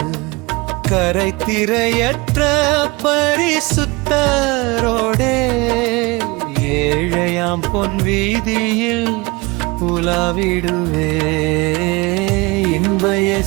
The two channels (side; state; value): left; quieter; 24.7 dB